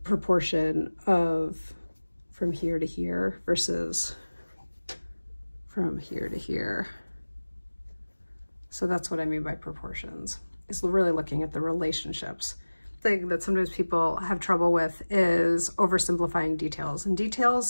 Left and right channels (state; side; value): inverted; both; correlation -1.00